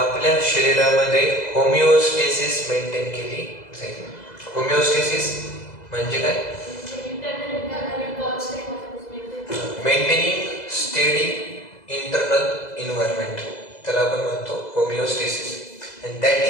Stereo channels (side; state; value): right; late; 2.0 ms